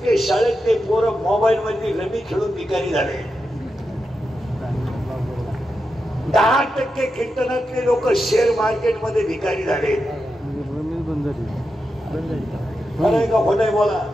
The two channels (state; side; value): normal; both; correlation 0.88